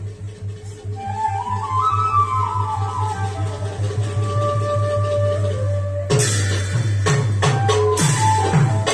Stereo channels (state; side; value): identical; both; correlation 1.00